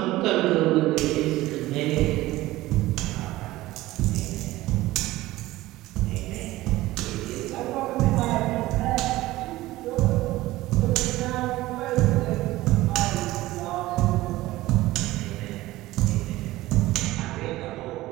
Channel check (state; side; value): quieter; left; 17.4 dB